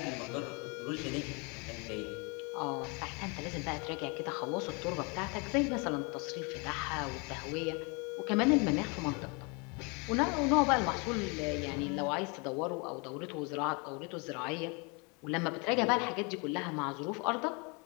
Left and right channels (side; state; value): right; quieter; 31.5 dB